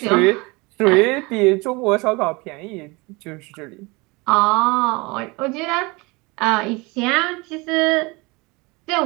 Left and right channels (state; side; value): quieter; left; 25.7 dB